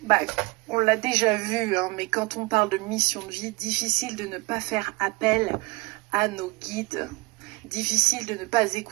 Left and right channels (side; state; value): left; quieter; 24.7 dB